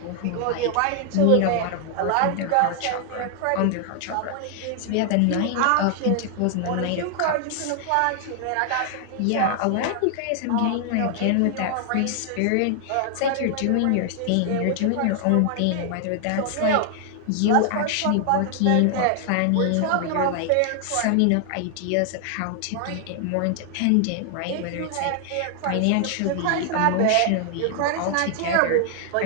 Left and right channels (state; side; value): different; both; correlation 0.00